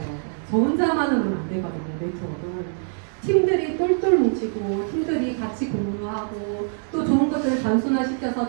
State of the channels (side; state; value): left; silent; digital silence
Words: 저 혼자만은 안 되거든요, 네트워크는. 팀들이 똘똘 뭉치고 팀들이 같이 공유하고 또 좋은 것들을